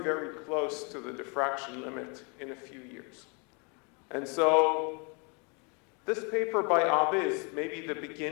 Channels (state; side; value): quieter; right; 33.7 dB